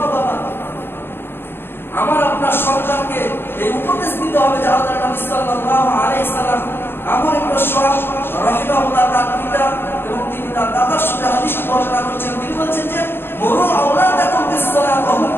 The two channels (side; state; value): right; late; 0.11 ms